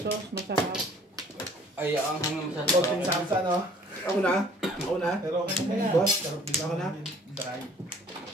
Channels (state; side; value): normal; both; correlation 0.55